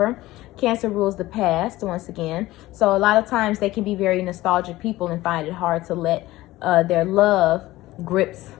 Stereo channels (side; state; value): right; quieter; 17.4 dB